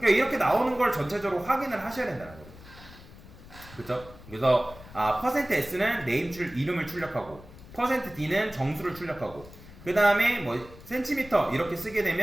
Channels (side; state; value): left; noise; rumble, 19 dB below the sound